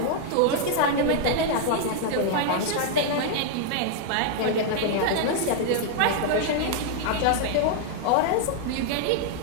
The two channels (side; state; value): both; different; correlation 0.00